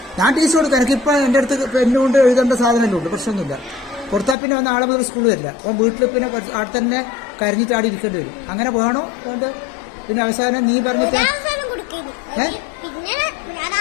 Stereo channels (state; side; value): drops out; right; at 4.4 s